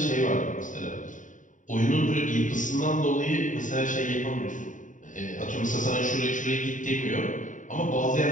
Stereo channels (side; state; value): right; late; 0.37 ms